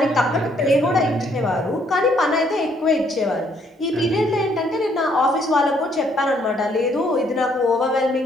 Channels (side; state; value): both; normal; correlation 0.68